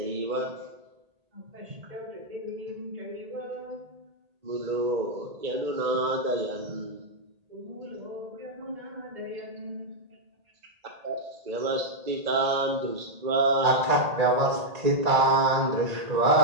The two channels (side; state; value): left; late; 1.8 ms